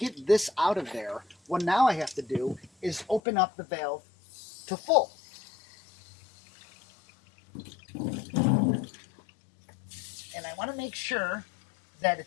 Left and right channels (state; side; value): drops out; right; at 3.2 s